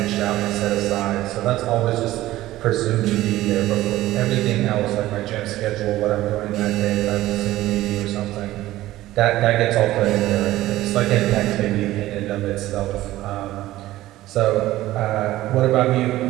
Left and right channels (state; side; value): quieter; left; 15.8 dB